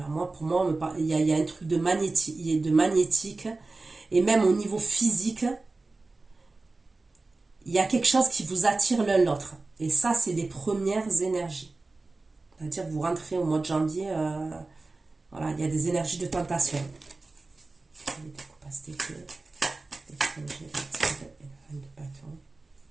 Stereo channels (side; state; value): left; quieter; 3.4 dB